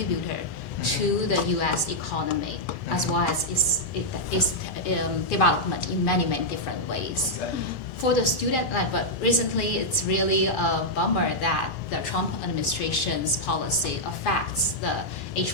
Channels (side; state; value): both; normal; correlation -0.04